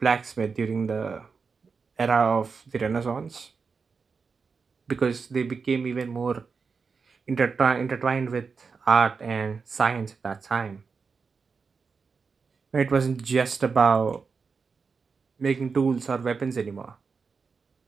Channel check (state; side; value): quieter; left; 5.1 dB